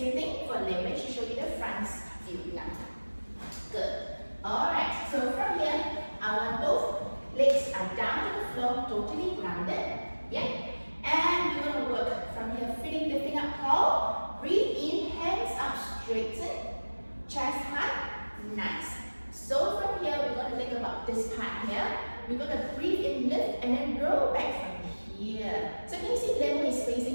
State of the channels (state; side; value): inverted; both; correlation -1.00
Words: thing for Lemon, she show you the front view now. Good. Alright, so from here, I want both legs are down to the floor, totally grounded. Yeah. And we're going to work from here, feeling lifting up tall. Breathe in, hands up, straighten. Chest high. Nice. So from here, we're going to think about this part here. We're going to breathe in, lift, and then roll back from here. So can you see Lemon is